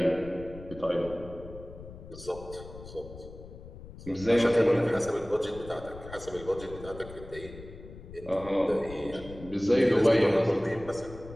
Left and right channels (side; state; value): left; noise; rumble, 15 dB below the sound